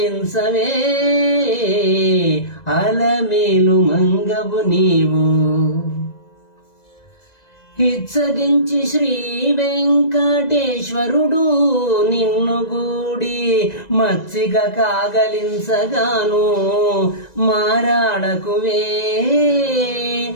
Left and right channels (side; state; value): right; late; 1.9 ms